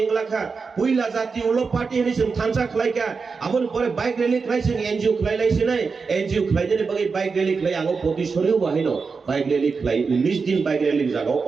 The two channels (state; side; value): quieter; left; 4.9 dB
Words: इंगलाखा पुइला जाति उलो पार्टी हनि जों थानचा खालायका आबोन परे बाइक रैली खालाय जों एनजिओ खालायलायसै नाय एनजिओ खालायनानै बागै बाइक रैली खालाय आंगो पतिसरियो बाहायनो बाइक रैली खालाय 19 दिन बाइक रैली जागाव